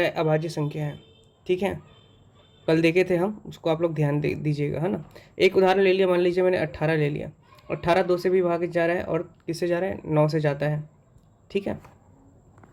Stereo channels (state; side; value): identical; both; correlation 1.00